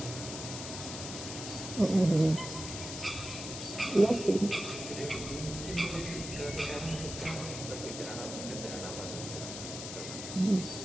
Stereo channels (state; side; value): noise; left; hiss, 7 dB below the sound